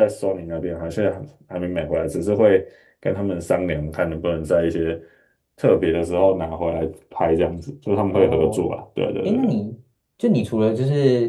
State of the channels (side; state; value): both; identical; correlation 1.00